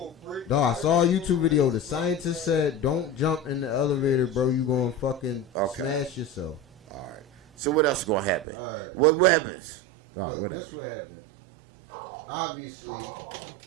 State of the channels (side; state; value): left; drops out; at 8.5 s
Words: No, I saw a YouTube video. The scientist said, "Don't jump in the elevator, bro. You gonna fucking smash yourself." All right. So what else gonna happen? All right. What happens? Look, this what happened. Obviously,